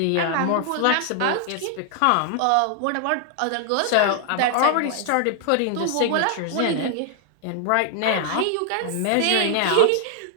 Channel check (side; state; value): both; different; correlation 0.00